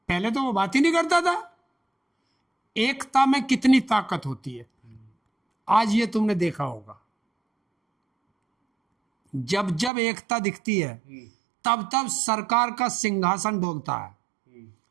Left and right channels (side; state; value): left; drops out; at 9.9 s